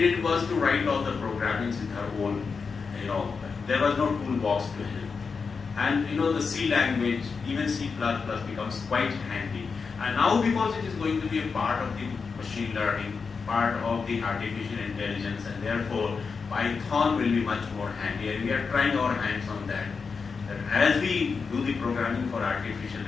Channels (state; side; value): quieter; right; 5.2 dB